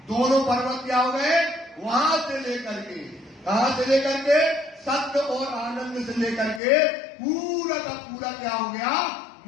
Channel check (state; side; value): drops out; right; at 6.6 s